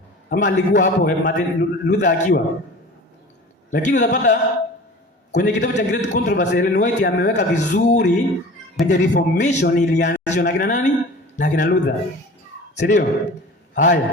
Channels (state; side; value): normal; both; correlation 0.40